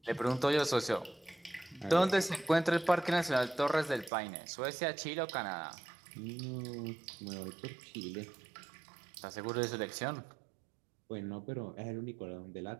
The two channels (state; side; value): drops out; left; at 4.1 s